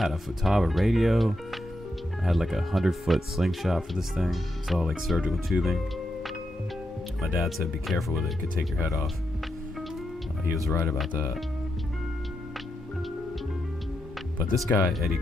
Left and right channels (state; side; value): normal; both; correlation 0.85